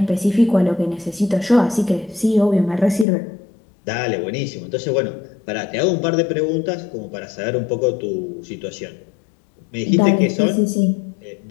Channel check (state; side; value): drops out; right; at 3.1 s